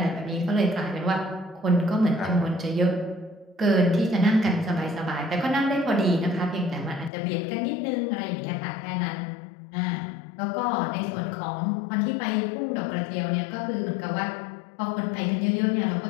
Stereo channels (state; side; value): drops out; right; at 7.1 s